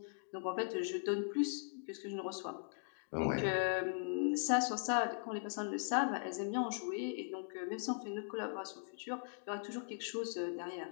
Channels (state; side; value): silent; right; digital silence